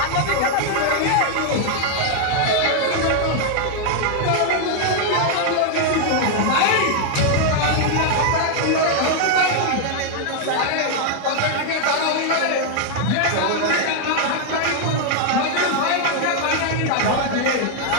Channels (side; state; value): both; different; correlation 0.00